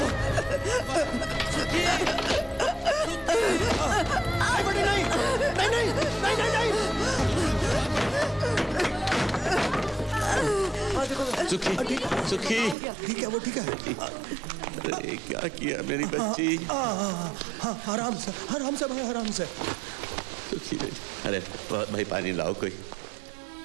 सुखी, बेटी नहीं, सुखी, सुखी, ठीक है, वो ठीक है। अरे क्या किया मेरी बच्ची? आराम से भाई, आराम से। सुखी बेटी, अरे भाई पानी लाओ कोई।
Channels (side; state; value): left; drops out; at 12.8 s